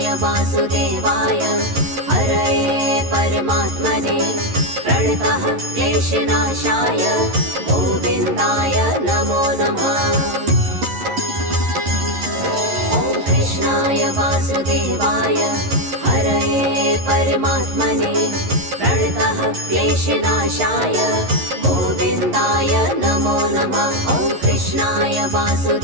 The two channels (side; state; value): left; late; 11 ms